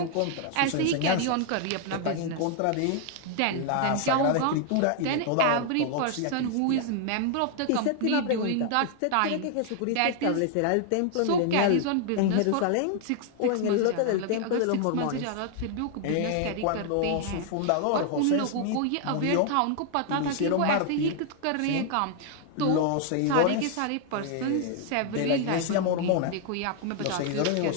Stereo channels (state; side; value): different; both; correlation 0.00